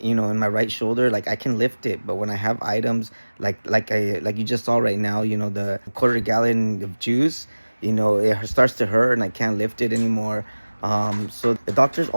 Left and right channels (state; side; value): inverted; both; correlation -1.00